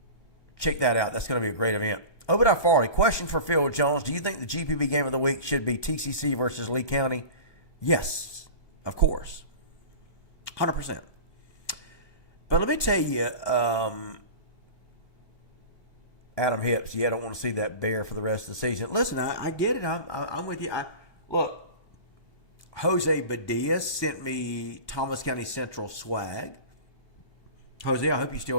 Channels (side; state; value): right; late; 1.1 ms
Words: check that out. That's going to be a great event. Obadiah Farley, question for Phil Jones. Do you think the GPB game of the week should be TCC versus Lee County? Yes, of course. 100%. But let me tell you, Adam Hips, I don't want to see that bear for the rest of the season. Listen, I get it. I'm with you. Look, Jose Badilla sent me Thomas County Central swag. Jose, I hope you're still